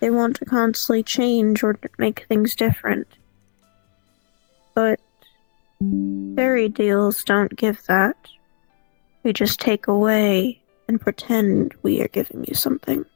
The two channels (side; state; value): right; silent; 63 dB below the other